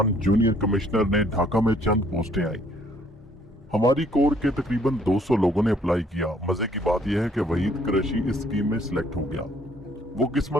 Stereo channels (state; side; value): normal; both; correlation 0.62